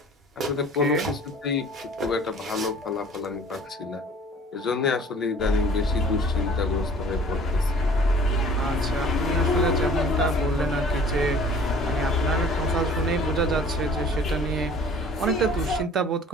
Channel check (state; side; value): normal; both; correlation 0.50